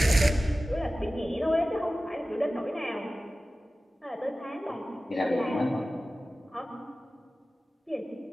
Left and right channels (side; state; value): both; normal; correlation 0.96